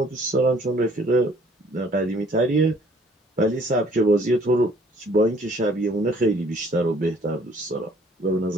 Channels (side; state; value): both; normal; correlation 0.59